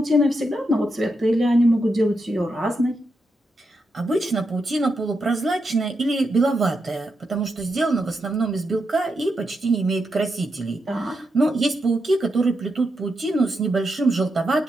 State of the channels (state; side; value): normal; both; correlation 0.84